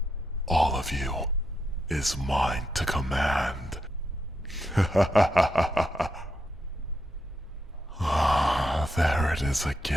All of you is mine to command. There it is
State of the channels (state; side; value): normal; both; correlation 0.82